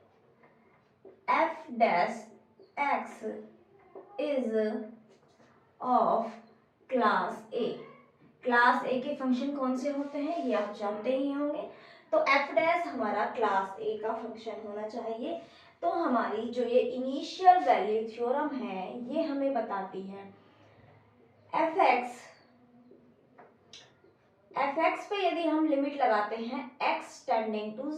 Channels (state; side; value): identical; both; correlation 1.00